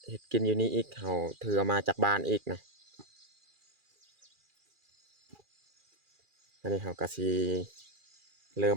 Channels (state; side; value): late; left; 2.4 ms